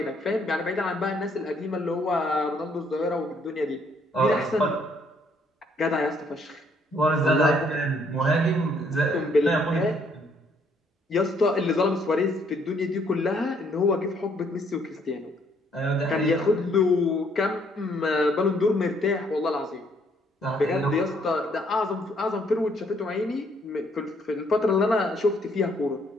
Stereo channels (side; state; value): both; normal; correlation 0.67